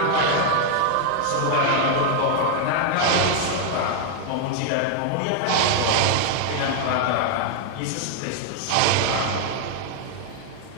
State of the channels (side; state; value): both; different; correlation 0.00